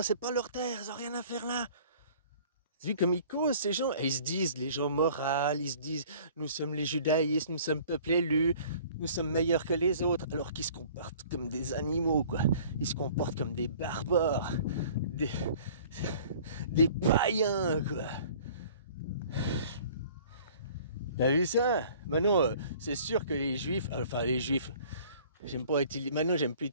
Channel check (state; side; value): inverted; both; correlation -0.50